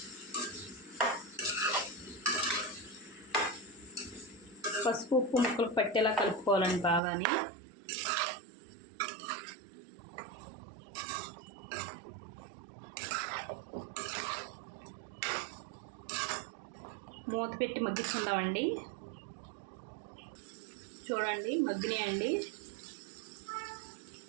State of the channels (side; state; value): left; drops out; at 7.0 s